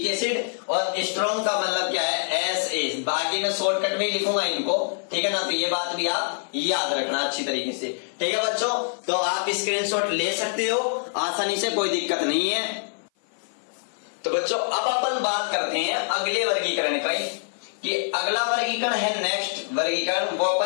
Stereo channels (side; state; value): right; silent; 56 dB below the other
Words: एसिड और स्ट्रॉन्ग का मतलब क्या है, SA। बाकी मैं शॉर्टकट में लिखूंगा इनको, ठीक है ना। तो ये बात भी आप याद रखना अच्छी तरीके से, ठीक है बच्चों। तो आप स्क्रीनशॉट ले सकते हो आसानी से, कोई दिक्कत नहीं है। तो बच्चों अब अपन बात करते हैं अगले वर्गीकरण का, कि अगला वर्गीकरण है नेक्स्ट वर्गीकरण, वो